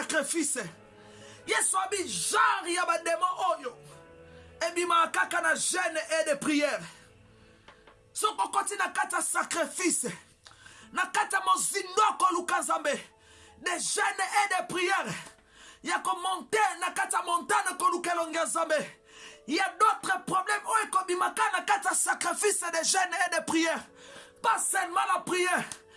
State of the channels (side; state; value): both; identical; correlation 1.00